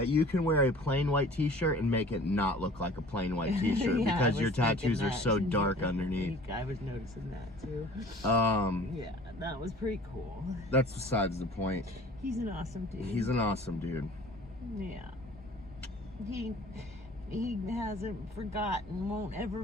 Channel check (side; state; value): both; normal; correlation 0.47